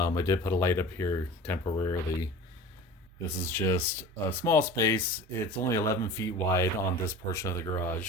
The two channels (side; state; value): both; normal; correlation 0.38